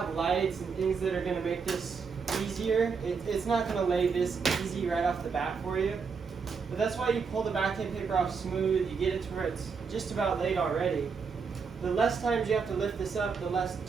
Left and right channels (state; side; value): quieter; left; 5.5 dB